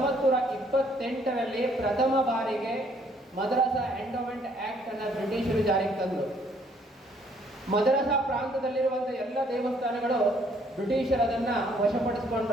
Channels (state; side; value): normal; both; correlation 0.64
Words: ಪ್ರಥಮ ಬಾರಿಗೆ madrasa endowment act ಅನ್ನು ಬ್ರಿಟಿಷರು ಜಾರಿಗೆ ತಂದರು. ಮದ್ರಸಾ ಪ್ರಾಂತದಲ್ಲಿರುವಂಥ ಎಲ್ಲ ದೇವಸ್ಥಾನಗಳು ಬ್ರಿಟಿಷರು ಅದನ್ನು